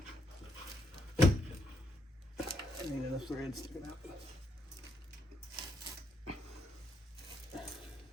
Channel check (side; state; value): both; normal; correlation 0.77